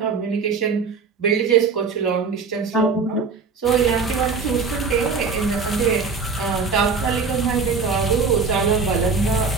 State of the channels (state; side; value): quieter; left; 4.9 dB